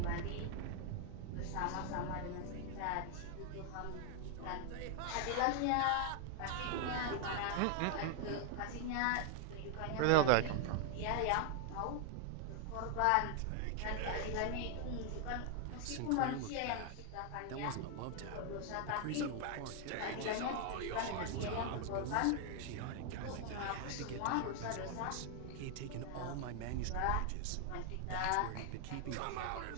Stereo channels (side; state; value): both; different; correlation 0.00